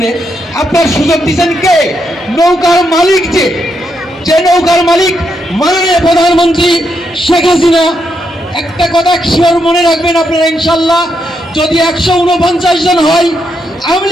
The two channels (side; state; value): both; normal; correlation 0.80